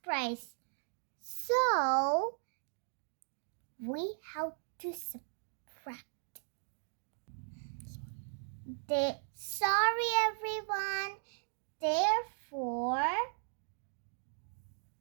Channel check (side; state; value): left; silent; digital silence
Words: price. So, we have to subtract. Sorry, everyone. Therefore,